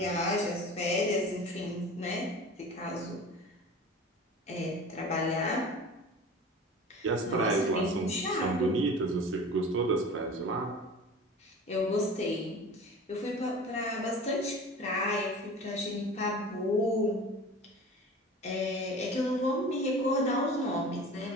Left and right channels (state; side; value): normal; both; correlation 0.38